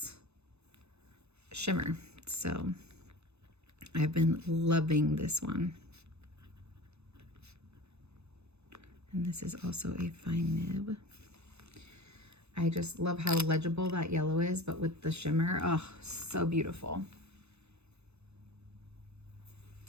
shimmer. So I've been loving this one. And this is also a fine nib. I just love how legible that yellow is, but with the shimmer, oh, so beautiful.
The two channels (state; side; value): late; left; 0.80 ms